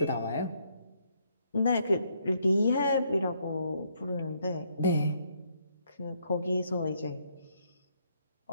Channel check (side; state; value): both; inverted; correlation -0.72